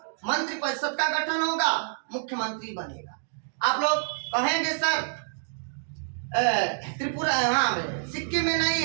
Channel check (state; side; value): silent; left; digital silence